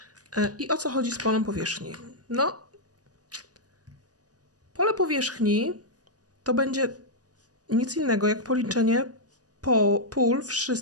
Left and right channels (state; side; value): late; left; 0.68 ms